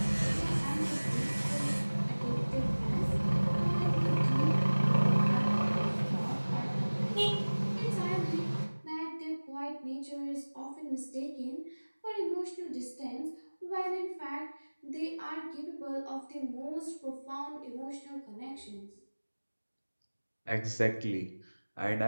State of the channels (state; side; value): inverted; both; correlation -1.00